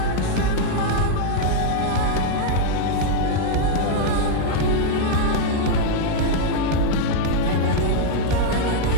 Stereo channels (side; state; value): both; different; correlation 0.00